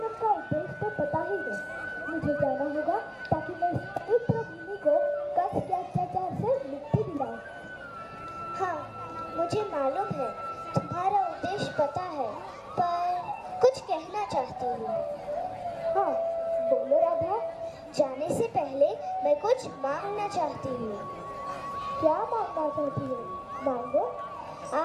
का उद्देश्य तो पता ही है। मुझे जाना होगा ताकि मैं इस पवित्र भूमि को कंस के अत्याचार से मुक्ति दिलाऊं। हाँ, मुझे मालूम है, तुम्हारा उद्देश्य पता है, पर कुछ कहना चाहती हूँ। हाँ, बोलो राधा। जाने से पहले मैं कुछ मांगना चाहती हूँ। क्या मांगना चाहती हो? मांगो।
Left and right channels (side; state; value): both; identical; correlation 1.00